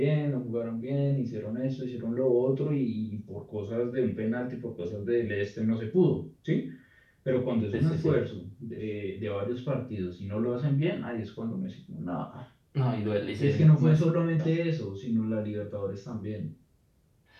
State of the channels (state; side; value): identical; both; correlation 1.00